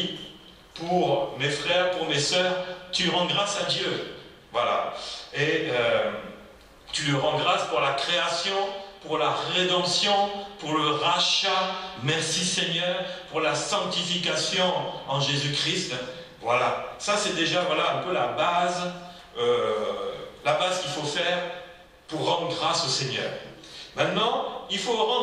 pour mes frères, pour mes sœurs. Tu rends grâce à Dieu. Voilà. Et tu lui rends grâce pour la création, pour la rédemption, pour le rachat. Merci Seigneur pour la sanctification en Jésus-Christ. Voilà. Ça c'est déjà voilà, un peu la base qu'il faut faire pour rendre grâce au Seigneur. Maintenant, il faut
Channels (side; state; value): both; identical; correlation 1.00